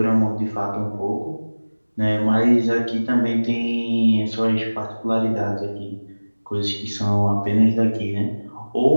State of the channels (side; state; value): both; inverted; correlation -1.00